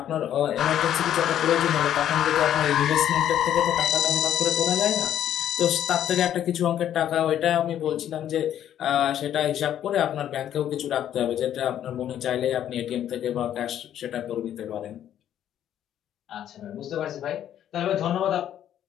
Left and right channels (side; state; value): right; quieter; 10.7 dB